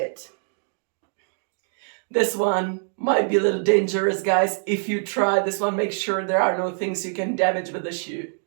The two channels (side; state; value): left; silent; digital silence